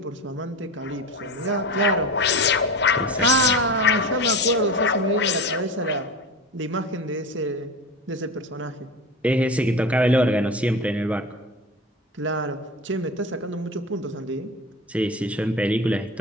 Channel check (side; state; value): both; normal; correlation 0.28